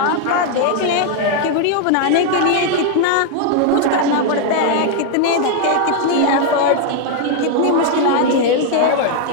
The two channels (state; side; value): different; both; correlation 0.00